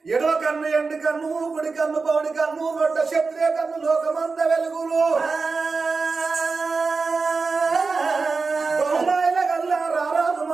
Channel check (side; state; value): left; quieter; 4.4 dB